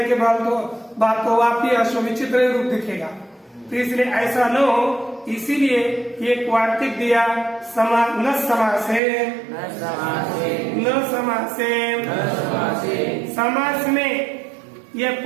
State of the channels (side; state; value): left; drops out; at 9.0 s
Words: के बाद तो वापी अश्व विचित्र रूप दिखेगा। तो इसलिए ऐसा न हो, इसीलिए ये वार्तिक दिया न समासे, न समासे। समास में यह